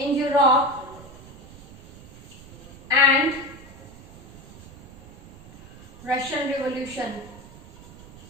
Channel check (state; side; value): noise; right; rumble, 18 dB below the sound